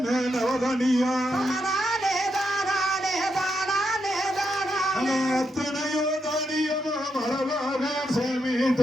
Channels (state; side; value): normal; both; correlation 0.82